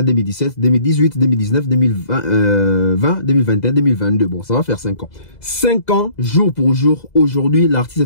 2017, 2018, 2019, 2020, 2021, 2022. Bon, ça va faire 5 ans. 5 ans, jour pour jour. Aujourd'hui, l'artiste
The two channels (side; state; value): right; late; 2.0 ms